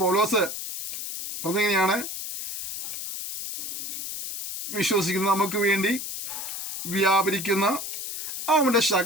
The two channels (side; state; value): left; noise; hiss, 7 dB below the sound